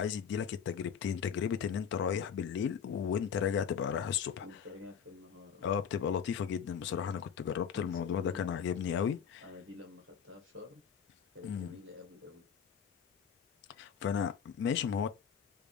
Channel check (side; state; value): right; quieter; 7.5 dB